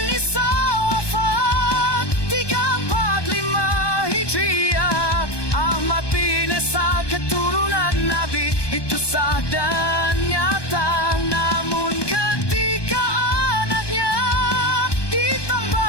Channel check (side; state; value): right; late; 1.2 ms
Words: Isa wafat 345 Hijriah. Ahmad bin Isa keturunan Nabi, itu sah dan nyata. Namun ketika anaknya